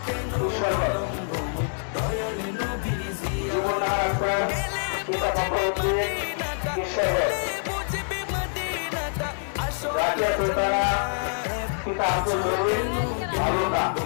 কেন বিলম্ব দয়াল নবীর জিয়ারত। গেলে বুঝবে মদিনাটা, গেলে বুঝবে মদিনাটা আসলে জান্নাত। আজও কেন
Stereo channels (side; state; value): right; silent; 61 dB below the other